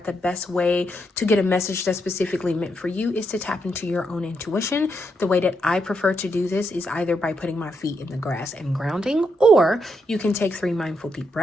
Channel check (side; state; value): both; normal; correlation 0.80